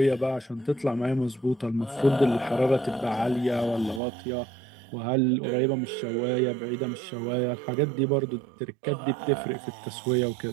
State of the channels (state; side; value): drops out; left; at 4.0 s